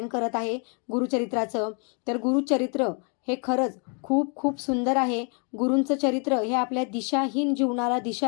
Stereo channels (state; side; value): quieter; right; 38.2 dB